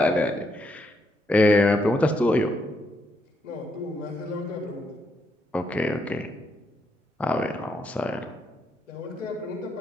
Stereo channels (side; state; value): both; normal; correlation 0.78